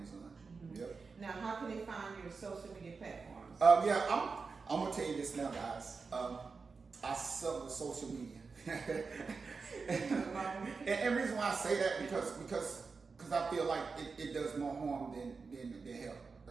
Mm-hmm. Yep. Now, how can they find your social media platforms? I'm going to tell you this now, guys. I suck with social media. and reason why I say that because I feel like it does more harm than help.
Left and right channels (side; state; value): left; quieter; 4.7 dB